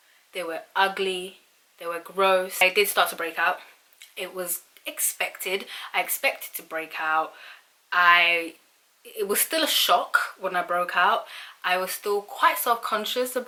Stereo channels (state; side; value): identical; both; correlation 1.00